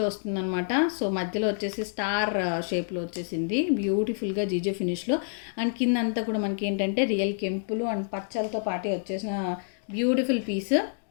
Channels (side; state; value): right; silent; digital silence